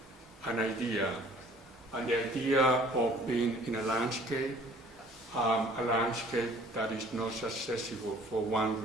an idea, and the idea of being in a landscape that is not accessible for one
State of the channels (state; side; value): normal; both; correlation 0.53